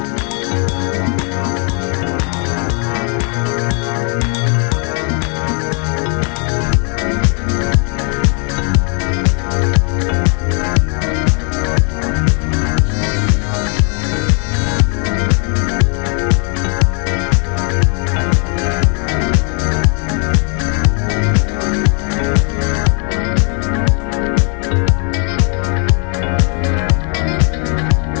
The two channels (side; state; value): right; quieter; 38.1 dB